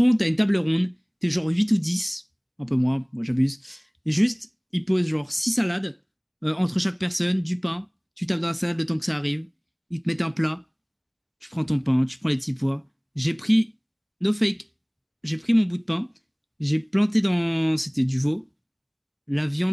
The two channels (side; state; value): both; identical; correlation 1.00